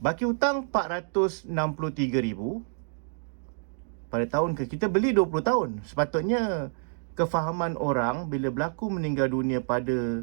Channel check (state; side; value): silent; left; digital silence